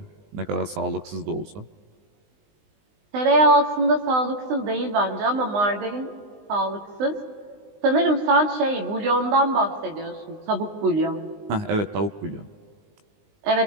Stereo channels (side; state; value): left; late; 19 ms